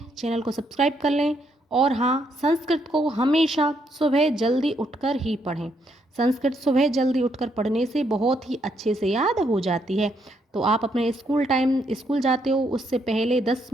चैनल को सब्सक्राइब कर लें। और हाँ, संस्कृत को हमेशा सुबह जल्दी उठकर ही पढ़ें। संस्कृत सुबह जल्दी उठकर पढ़ने से बहुत ही अच्छे से याद हो जाती है। तो आप अपने स्कूल जाते हो उससे पहले 10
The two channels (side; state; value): both; normal; correlation 0.75